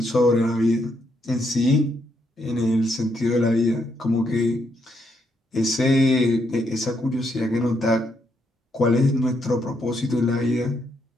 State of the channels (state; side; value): normal; both; correlation 0.76